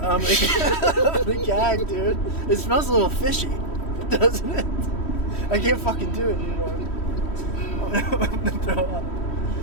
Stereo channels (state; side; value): late; right; 3.1 ms